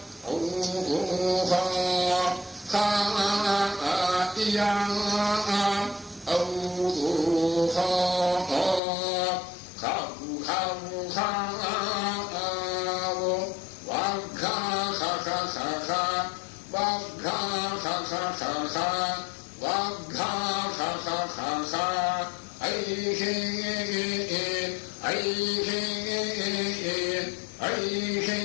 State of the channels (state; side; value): drops out; right; at 8.8 s